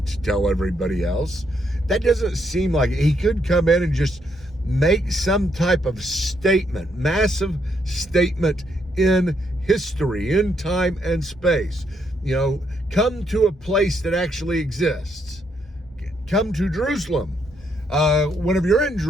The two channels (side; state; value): both; normal; correlation 0.75